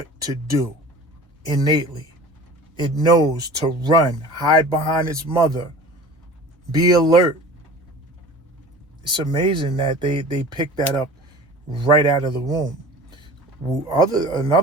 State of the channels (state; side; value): normal; both; correlation 0.41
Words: to do innately. It knows to run, hide behind its mother, be alert. It's amazing that they picked that up right out of the womb.